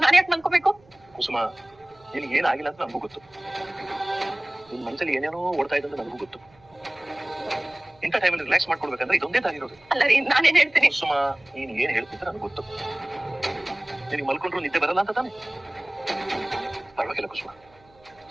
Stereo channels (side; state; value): right; noise; hum, 29 dB below the sound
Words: ನಾನು ಯಾಕೆ ಮಲ್ಕೋಬೇಕು? ಕುಸುಮ, ನಿನ್ಗೆ ಏನಾಗಿಲ್ಲ ಅಂತ ನನಗೂ ಗೊತ್ತು. ನಿನ್ ಮನಸ್ಸಲ್ಲಿ ಏನೇನೋ ಓಡ್ತಾ ಇದೆ ಅಂತ ನನಗೂ ಗೊತ್ತು. ಇಂಥ ಟೈಮಲ್ಲಿ ರಿಲ್ಯಾಕ್ಸ್ ಮಾಡ್ಕೊಡ್ಬೇಕಂದ್ರೆ ಇದೊಂದೇ ದಾರಿರೋದು. ಅಲ್ಲ ರೀ, ನಾನೇನ್ ಹೇಳ್ತೀನಿ? ಕುಸುಮ, ನೀನ್ ಏನ್ ಹೇಳ್ತಿದ್ರೆ ನನಗೆ ಗೊತ್ತು. ನಿನಗೆ ಮಲ್ಕೊಂಡ್ರು ನಿದ್ದೆ ಬರಲ್ಲ ಅಂತ ತಾನೆ? ಪರವಾಗಿಲ್ಲ ಕುಸುಮ,